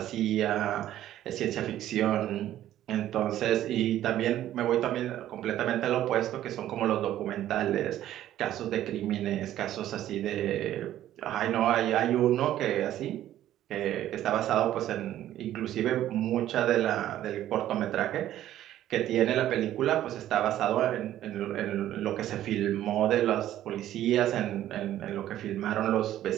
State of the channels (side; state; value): left; quieter; 12.7 dB